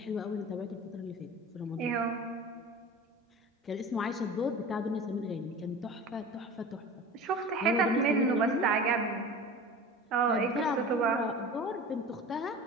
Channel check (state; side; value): normal; both; correlation 0.36